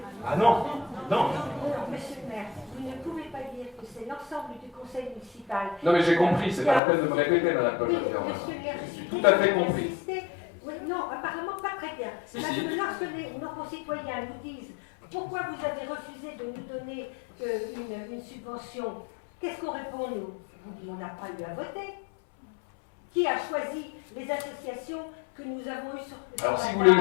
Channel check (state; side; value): drops out; right; at 6.8 s